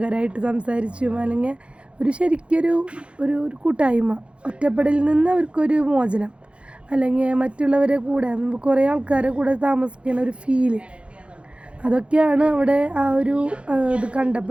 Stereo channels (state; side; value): late; left; 0.059 ms